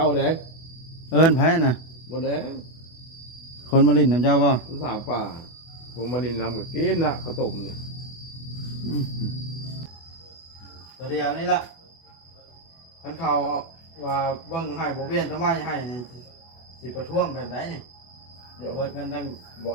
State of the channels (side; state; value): right; late; 24 ms